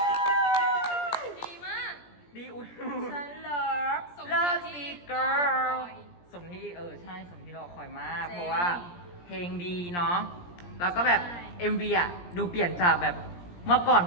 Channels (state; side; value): late; right; 17 ms